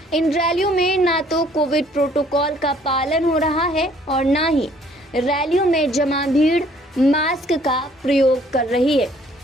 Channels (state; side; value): normal; both; correlation 0.60